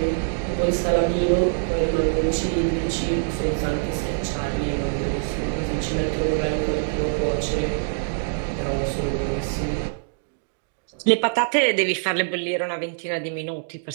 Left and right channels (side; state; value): left; silent; digital silence